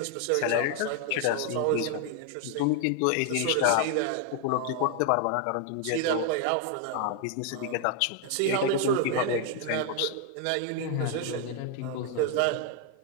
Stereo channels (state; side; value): different; both; correlation 0.00